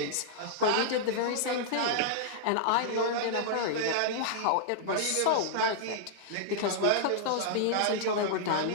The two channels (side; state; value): both; different; correlation -0.01